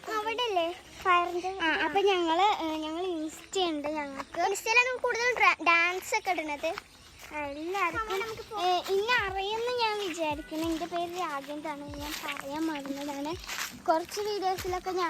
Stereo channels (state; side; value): identical; both; correlation 1.00